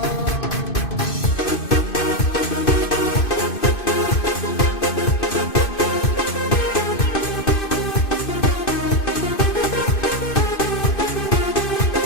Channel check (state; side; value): late; right; 2.6 ms